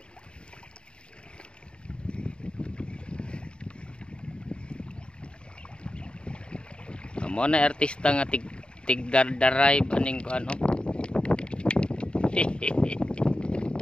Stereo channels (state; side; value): late; right; 0.053 ms